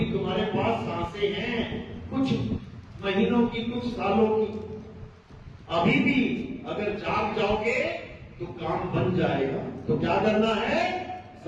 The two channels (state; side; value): identical; both; correlation 1.00